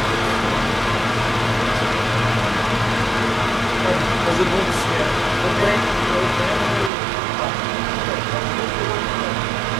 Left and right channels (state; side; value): drops out; left; at 6.9 s